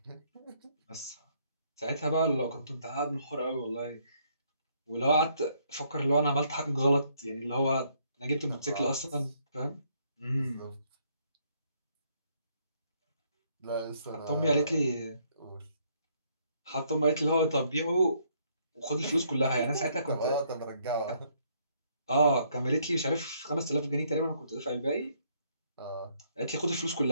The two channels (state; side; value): inverted; both; correlation -0.69